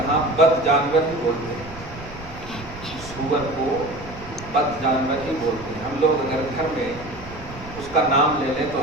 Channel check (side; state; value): right; noise; rumble, 16 dB below the sound